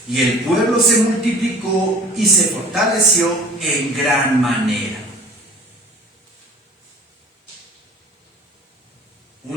y el pueblo se multiplicó y se fortaleció en gran manera.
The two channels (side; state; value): both; normal; correlation 0.45